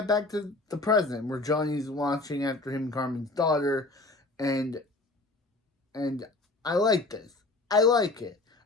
back to the present, where Johnny's watching after him and Carmen's daughter, and I like this. I like it.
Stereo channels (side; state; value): right; quieter; 3.1 dB